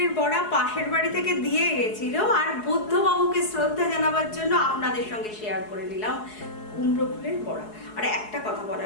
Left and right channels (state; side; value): late; right; 4.7 ms